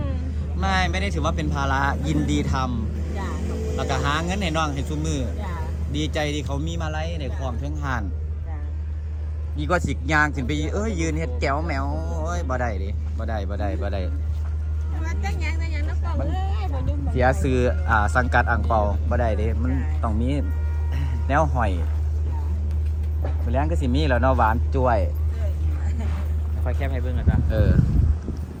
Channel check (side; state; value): both; identical; correlation 1.00